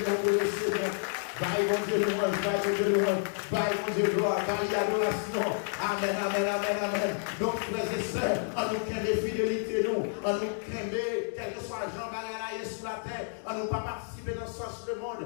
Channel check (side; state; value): right; silent; digital silence